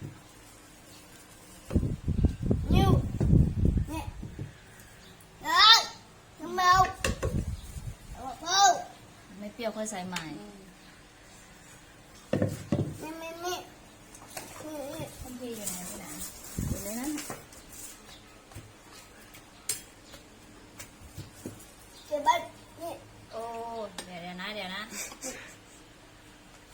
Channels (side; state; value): both; identical; correlation 1.00